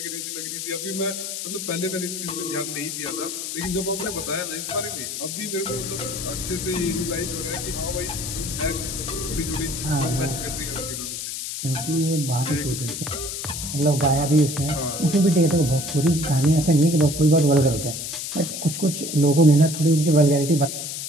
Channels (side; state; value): left; noise; hiss, 5 dB below the sound